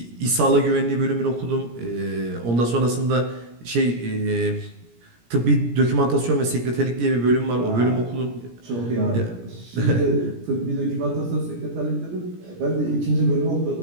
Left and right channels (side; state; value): left; late; 17 ms